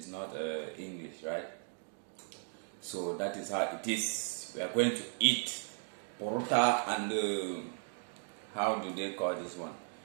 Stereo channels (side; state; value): left; silent; 53 dB below the other